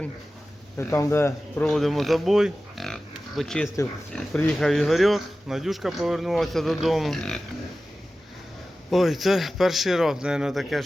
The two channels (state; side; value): normal; both; correlation 0.95